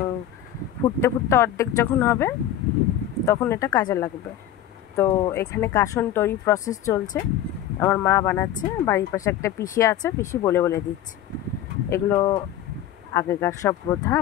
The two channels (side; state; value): right; quieter; 11.3 dB